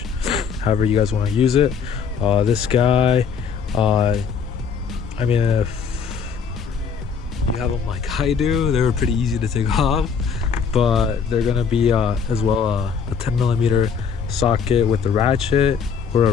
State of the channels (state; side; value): quieter; right; 6.3 dB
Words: however you guys want to use it. This guy, I mean, if you have them like I do, they were pretty easy to take off, but they're gonna be as well a 10mm socket with the ratchet or